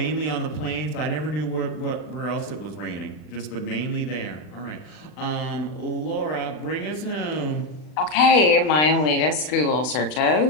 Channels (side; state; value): right; late; 40 ms